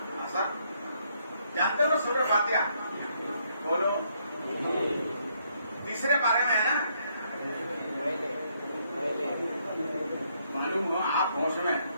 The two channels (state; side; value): inverted; both; correlation -0.72